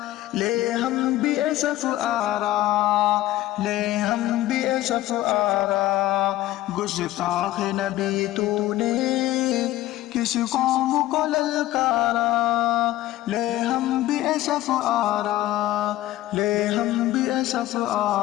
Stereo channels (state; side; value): quieter; right; 15.4 dB